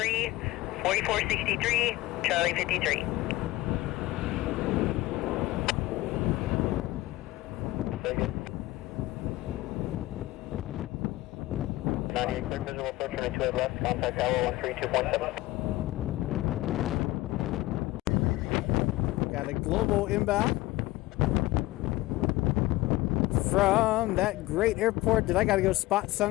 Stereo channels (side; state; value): right; quieter; 18.2 dB